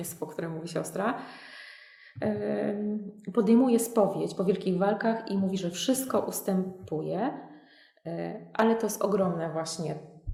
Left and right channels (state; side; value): identical; both; correlation 1.00